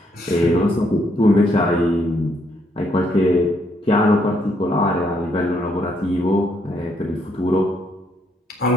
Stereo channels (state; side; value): normal; both; correlation 0.73